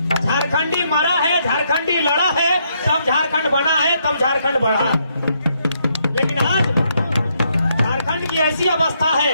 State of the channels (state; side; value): inverted; both; correlation -0.75